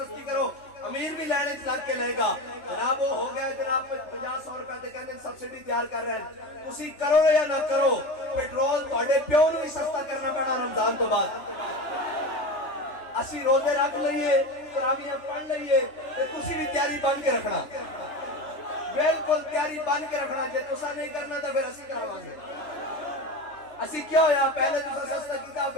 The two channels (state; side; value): late; right; 3.4 ms